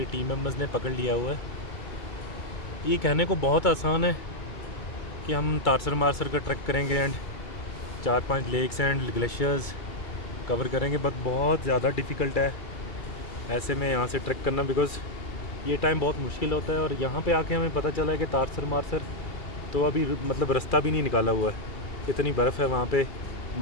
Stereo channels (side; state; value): right; late; 2.3 ms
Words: टीम मेंबर्स ने पकड़ लिया हुआ है। ये कहने को बहुत आसान है कि हम तारसर मारसर का ट्रैक करेंगे and 4-5 lakes and glaciers cover करेंगे, बट बहुत ज़्यादा डिफ़िकल्ट है ऐसे में यहाँ से ट्रैक करना, बिकॉज़ ये टाइम बहुत मुश्किल होता है। और यहाँ पे आके हमें पता चला है कि तारसर मारसर तो अभी मतलब रास्ता भी नहीं निकाला हुआ है, इतनी बर्फ़ है वहाँ पे।